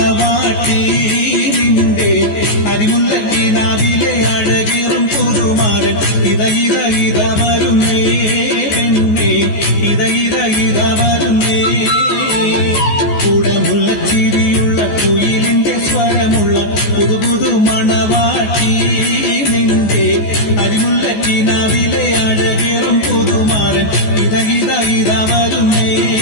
നിന്റെ അരിമുല്ലക്കിനാവിലെ അഴകേറും പുതുമാരൻ ഇത വരുന്നേ പെണ്ണേ ഇത വരുന്നേ. കുടമുല്ലച്ചിരിയുള്ള കുയിലിന്റെ സ്വരമുള്ള പുതുപുതു മണവാട്ടി നിന്റെ അരിമുല്ലക്കിനാവിലെ അഴകേറും പുതുമാരൻ ഇത വരുന്നേ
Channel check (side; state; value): right; late; 14 ms